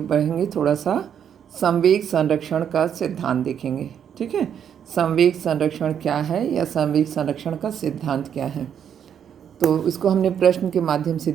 थोड़ा सा संवेग संरक्षण का सिद्धांत देखेंगे। ठीक है, संवेग संरक्षण क्या है या संवेग संरक्षण का सिद्धांत क्या है, तो इसको हमने प्रश्न के माध्यम से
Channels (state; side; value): quieter; left; 8.6 dB